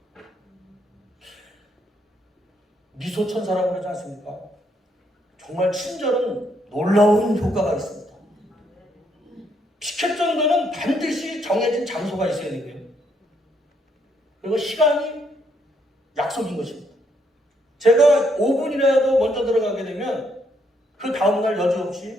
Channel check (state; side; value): normal; both; correlation 0.73